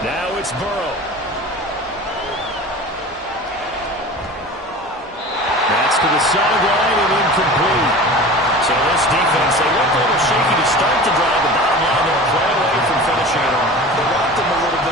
Now it's Burrow. That's to the sideline and incomplete. So this defense, they looked a little shaky to start the drive. The bottom line, they'll play away from finishing it off. They rocked them a little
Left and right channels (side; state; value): both; normal; correlation 0.36